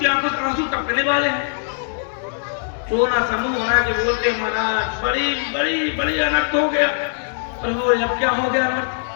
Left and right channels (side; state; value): right; silent; 65 dB below the other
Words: आंखों से आंसू टपकने वाले हैं। रोना समूह बना के बोलते महाराज बड़ी बड़ी बड़ी अनर्थ हो गया। प्रभु अब क्या हो गया अनर्थ?